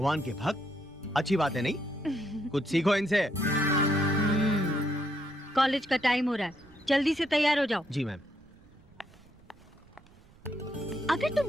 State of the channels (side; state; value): right; noise; rumble, 27 dB below the sound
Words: के भक्त। अच्छी बात है नहीं? कुछ सीखो इनसे। कॉलेज का टाइम हो रहा है, जल्दी से तैयार हो जाओ। जी मैम। अगर